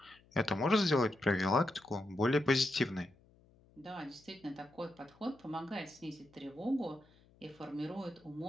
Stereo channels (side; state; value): left; noise; hum, 29 dB below the sound